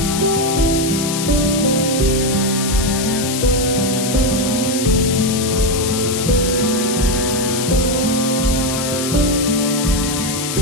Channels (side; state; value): left; noise; hiss, 4 dB below the sound